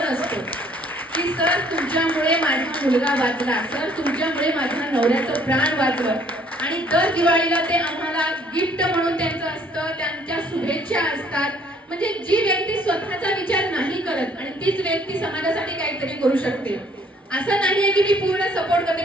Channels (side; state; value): both; normal; correlation 0.61